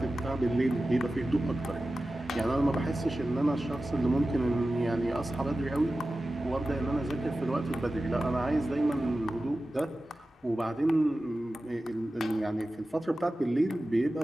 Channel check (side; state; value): both; normal; correlation 0.95